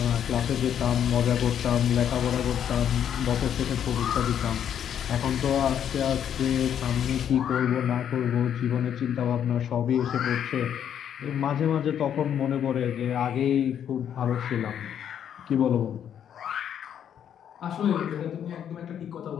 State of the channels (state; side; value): quieter; right; 9.2 dB